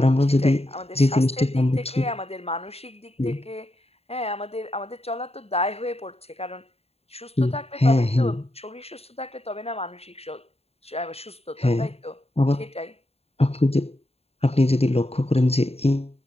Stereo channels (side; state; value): right; late; 0.29 ms